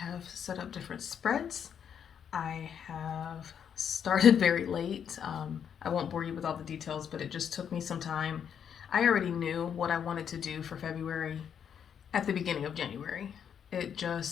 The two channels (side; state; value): right; quieter; 8.1 dB